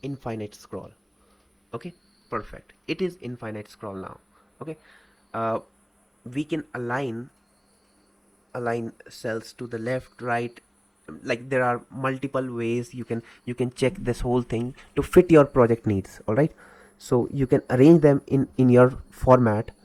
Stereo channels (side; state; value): both; identical; correlation 1.00